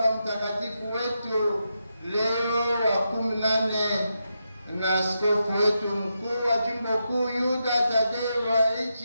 Mtakatifu wetu Leo wa 14 na askofu wetu mkuu wa jimbo kuu Yuda Tadeo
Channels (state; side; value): inverted; both; correlation -0.85